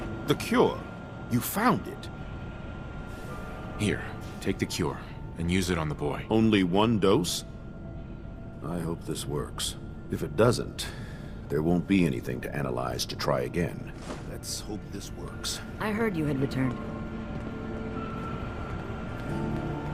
The cure. You found it. Here, take the cure, and use it on the boy. Only one dose? I hope this works. If it doesn't, there won't be anything to analyze to try again. Let's hope this works. I heard you had returned.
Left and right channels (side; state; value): both; identical; correlation 1.00